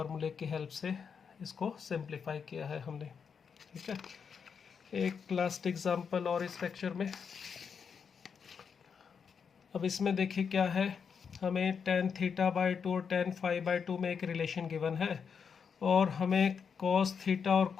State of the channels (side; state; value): right; quieter; 6.4 dB